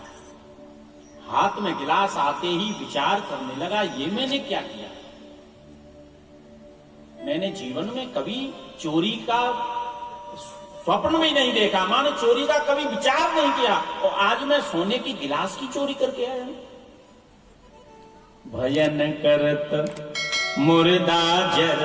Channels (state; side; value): identical; both; correlation 1.00